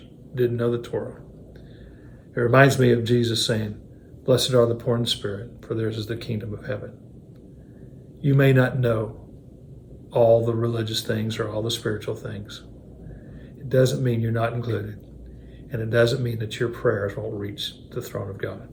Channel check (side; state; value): both; identical; correlation 1.00